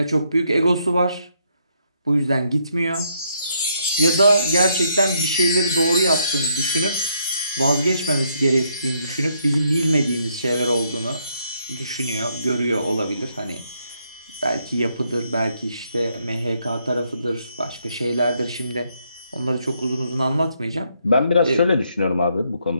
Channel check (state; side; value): inverted; both; correlation -0.73